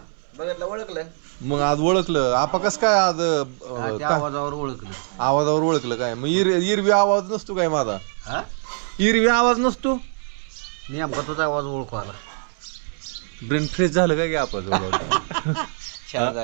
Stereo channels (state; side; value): silent; left; 63 dB below the other